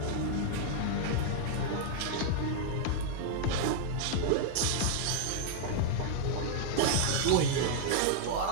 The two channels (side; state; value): both; different; correlation -0.01